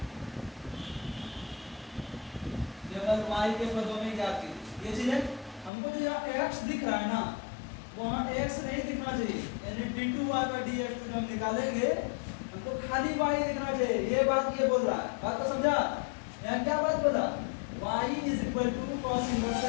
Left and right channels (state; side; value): drops out; right; at 5.7 s